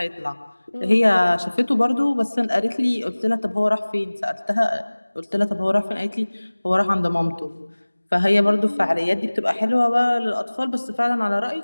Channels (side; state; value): both; inverted; correlation -1.00